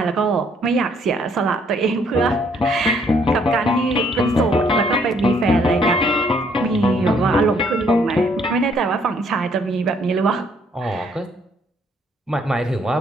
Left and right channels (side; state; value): both; normal; correlation 0.66